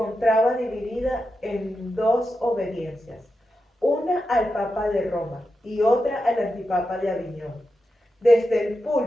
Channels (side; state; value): both; normal; correlation 0.89